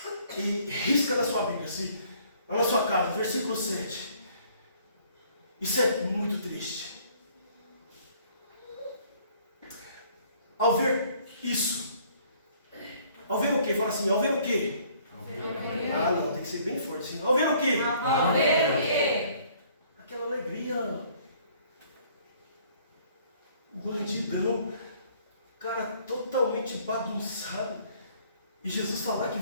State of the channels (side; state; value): both; inverted; correlation -0.60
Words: e risca na sua Bíblia, assim, lá na sua casa, versículo 7. Isso é muito triste. Ao ver isso, ao ver o quê? Fala assim, ao ver o quê? Ah, não, tem que ser bem forte, sim. Ao ver o quê? Ao ver o quê? Aquela alegria. Bandidão. Cara totalmente bagunçado. E Jesus falar que